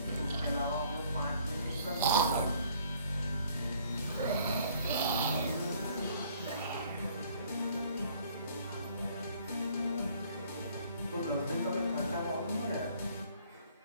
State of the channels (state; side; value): inverted; both; correlation -0.59